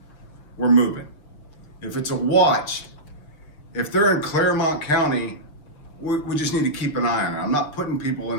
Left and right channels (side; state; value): right; late; 6.9 ms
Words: we're moving. If it's a watch, if they're in Clermont County, we just need to keep an eye on it. I'm not putting people in